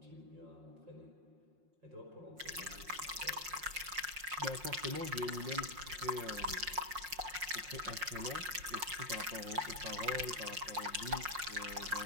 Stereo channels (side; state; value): left; late; 5.6 ms